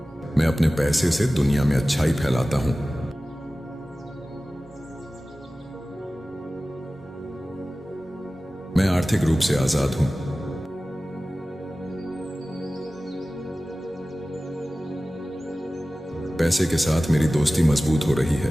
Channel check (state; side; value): normal; both; correlation 0.96